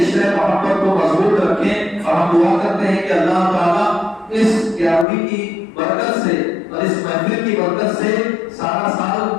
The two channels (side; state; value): right; drops out; at 5.1 s